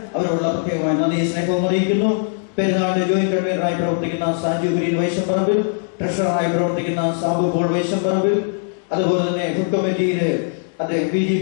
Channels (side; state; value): right; silent; digital silence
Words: അവരോടുള്ള പ്രത്യേകമായ നന്ദി സ്നേഹവും അറിയിക്കുന്നു. പെരുന്നാളിന്റെ ജോയിന്റ് കൺവീനറായി പ്രവർത്തിക്കുന്ന സാജു കുര്യൻ വൈശംപറമ്പിൽ, ട്രഷററായി പ്രവർത്തിക്കുന്ന സാബു പോൾ വൈശംപറമ്പിൽ, അതുപോലെ തന്നെ ഫുഡ് കമ്മിറ്റിയില് VG